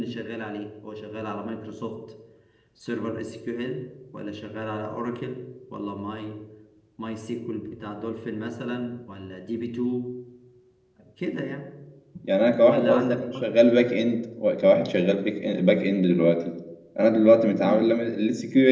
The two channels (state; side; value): identical; both; correlation 1.00